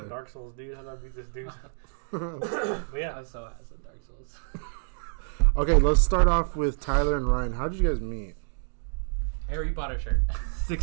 Dark Souls, dude. How do I beat this dude? But yeah, I'm so ass at Dark Souls. Okay, let's start off with Tyler and Ryan. How did you guys meet? Harry Potter shirt.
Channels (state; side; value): silent; left; digital silence